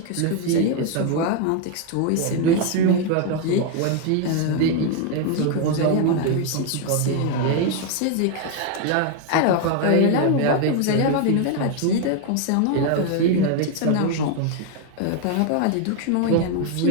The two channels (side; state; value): both; different; correlation 0.01